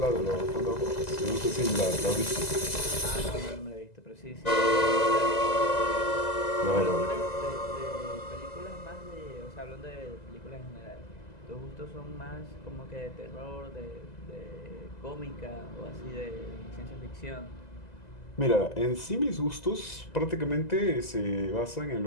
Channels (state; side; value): late; right; 2.0 ms